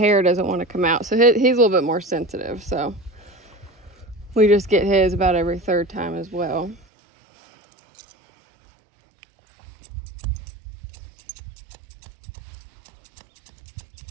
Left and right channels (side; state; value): left; drops out; at 6.9 s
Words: doesn't want to come out. So he's a little bit more sensitive. So we just get his about every third time as well.